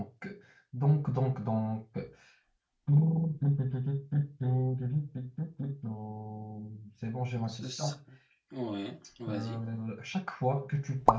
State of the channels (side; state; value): both; identical; correlation 1.00